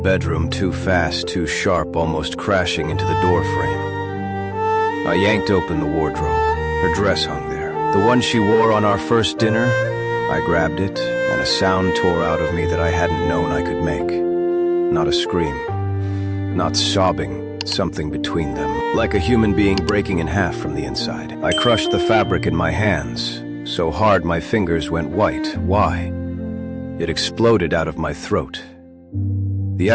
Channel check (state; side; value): identical; both; correlation 1.00